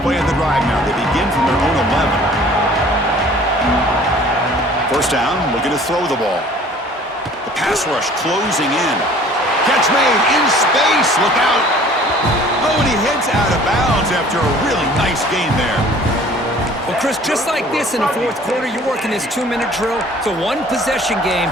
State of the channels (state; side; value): normal; both; correlation 0.51